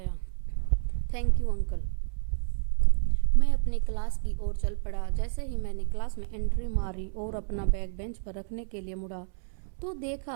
Thank you uncle. मैं अपनी क्लास की ओर चल पड़ा। जैसे ही मैंने क्लास में एंट्री मारी और अपना बैग बेंच पर रखने के लिए मुड़ा, तो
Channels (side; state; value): left; silent; 58 dB below the other